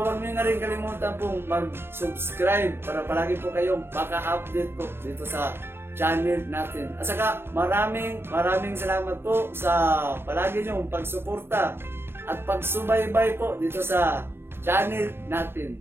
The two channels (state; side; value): late; left; 0.11 ms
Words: nyo na rin kalimutan po mag-subscribe para palagi po kayong maka-update po dito sa channel natin. At saka, maraming salamat po sa palagi nyong pagsuporta at pagsubaybay po dito sa channel